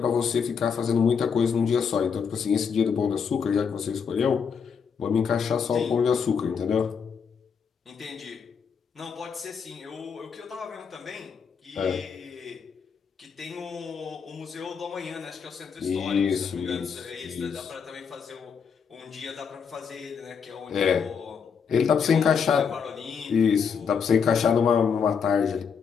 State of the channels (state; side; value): quieter; right; 6.4 dB